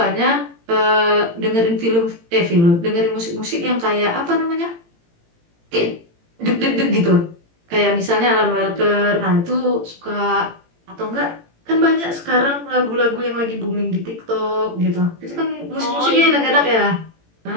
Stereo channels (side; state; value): left; late; 18 ms